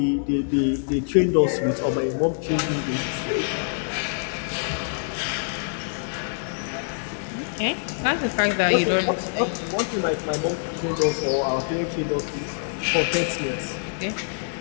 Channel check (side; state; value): right; silent; 56 dB below the other